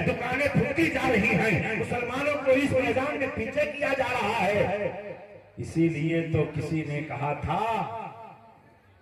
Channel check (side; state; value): both; identical; correlation 1.00